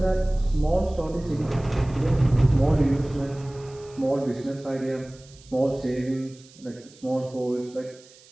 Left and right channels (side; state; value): right; noise; hiss, 25 dB below the sound